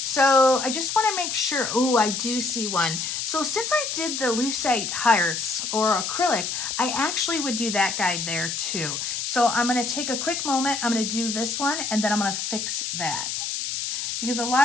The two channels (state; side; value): noise; left; hiss, 3 dB below the sound